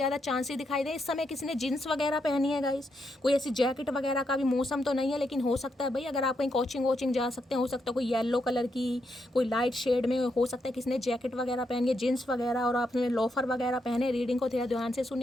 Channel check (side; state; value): both; normal; correlation 0.81